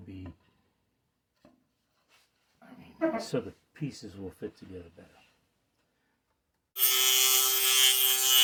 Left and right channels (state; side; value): identical; both; correlation 1.00